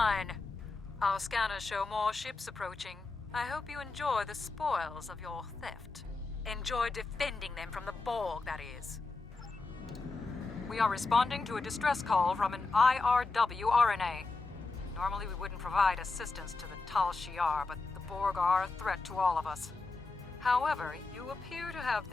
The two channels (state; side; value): quieter; right; 3.8 dB